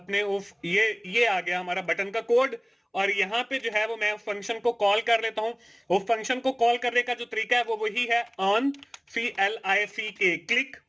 उस ये आ गया हमारा बटन का कोड, और यहाँ पे जो है वो मैं फंक्शन को कॉल कर लेता हूँ। वो फंक्शन को कॉल करने का जो तरीका है वो वही है, on CLICK click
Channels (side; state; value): both; identical; correlation 1.00